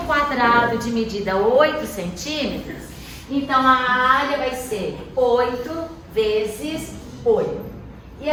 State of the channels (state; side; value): identical; both; correlation 1.00